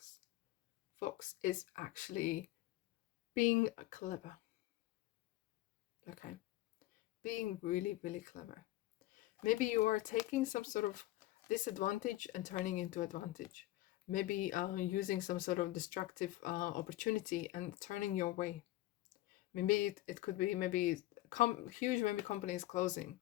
Fox is actually being clever. Okay, being really, really clever. Maybe you are taking some sort of disadvantage and turning into advantage. Maybe using some sort of destructive opportunity and turning your way. Maybe it could be maybe huge maybe company is closing,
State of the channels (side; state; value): right; quieter; 16.7 dB